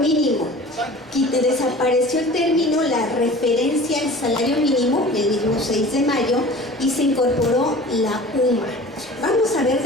Desapareció el término, la referencia al salario mínimo, el mismo 6 de mayo, y se incorporó la UMA. Vamos a ver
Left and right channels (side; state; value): both; normal; correlation 0.42